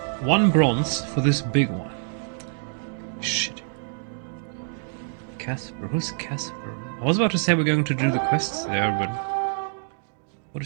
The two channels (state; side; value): silent; left; digital silence